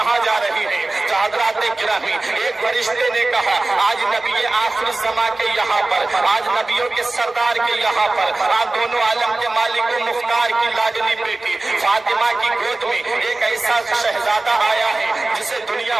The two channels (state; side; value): quieter; left; 3.1 dB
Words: جا رہی ہے؟ تو حضرات گرامی، ایک فرشتے نے کہا آج نبی آخر الزماں کے یہاں پر، آج نبیوں کے سردار کے یہاں پر، آج دونوں عالم کے مالک و مختار کی لاڈلی بیٹی فاطمہ کی گود میں ایک ایسا شہزادہ آیا ہے جسے دنیا